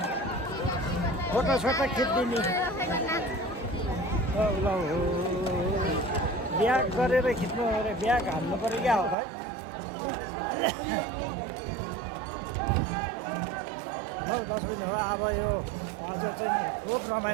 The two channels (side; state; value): left; drops out; at 9.2 s